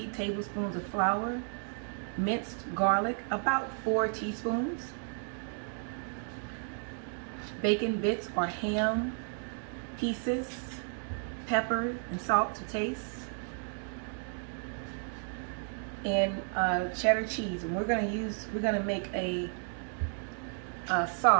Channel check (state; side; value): silent; left; 56 dB below the other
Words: tablespoons of flour, minced garlic, about 4 teaspoons, bacon bits or ham pieces, pepper and salt to taste, and cheddar cheese. And we're gonna make a